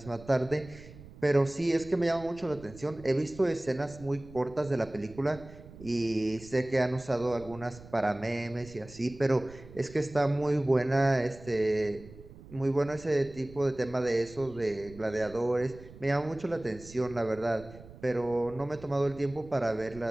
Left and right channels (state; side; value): noise; right; rumble, 18 dB below the sound